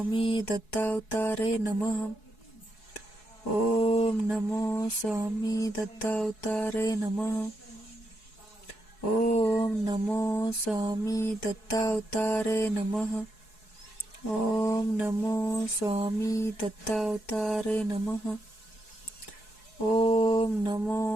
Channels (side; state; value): right; late; 4.7 ms